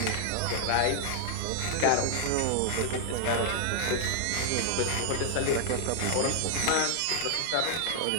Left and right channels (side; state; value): both; different; correlation 0.00